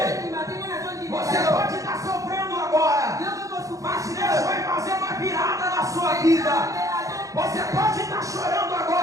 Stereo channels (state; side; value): late; left; 0.16 ms